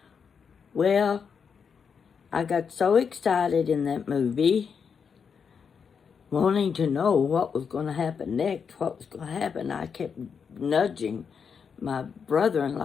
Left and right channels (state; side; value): quieter; right; 6.4 dB